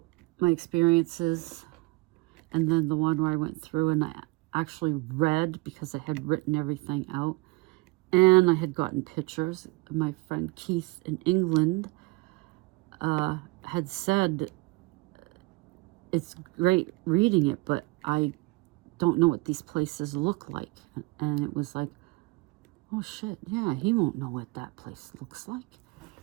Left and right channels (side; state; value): left; quieter; 24.0 dB